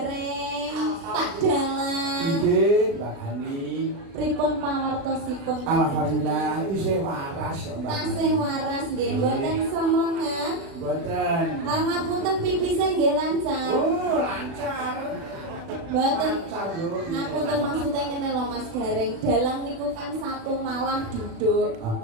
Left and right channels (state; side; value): late; left; 36 ms